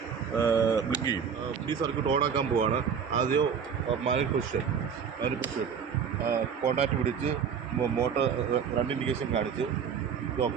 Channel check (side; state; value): left; quieter; 7.0 dB